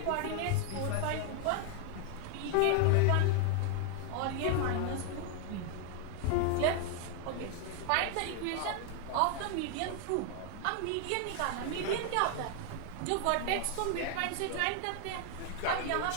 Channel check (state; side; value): different; both; correlation 0.00